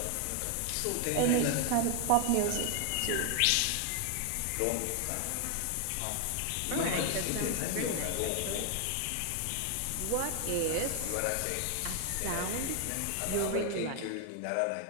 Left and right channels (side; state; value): both; different; correlation 0.00